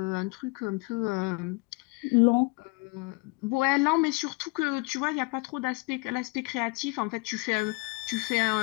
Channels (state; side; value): quieter; right; 26.3 dB